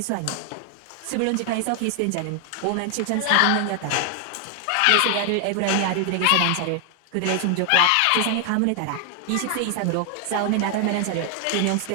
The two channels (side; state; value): both; different; correlation 0.00